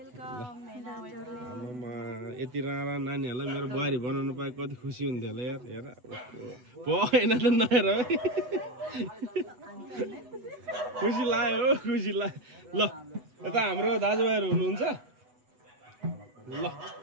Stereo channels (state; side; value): late; left; 8.1 ms